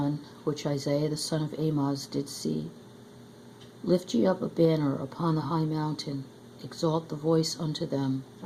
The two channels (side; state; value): both; identical; correlation 1.00